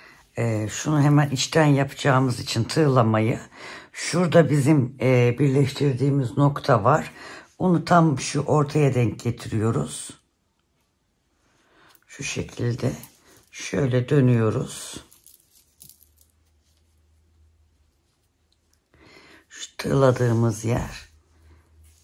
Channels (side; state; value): both; identical; correlation 1.00